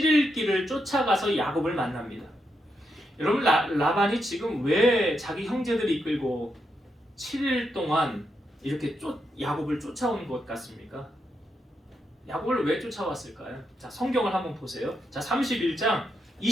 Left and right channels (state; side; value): normal; both; correlation 0.82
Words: 길을 쫓아가서 야곱을 만납니다. 여러분, 라반이 지금 왜 자기 형제들을 이끌고 7일 동안 이렇게 야곱을 쫓아온 것 같습니까? 야곱을 왜 쫓아왔을까요? 자, 성경을 한번 보세요. 자, 31장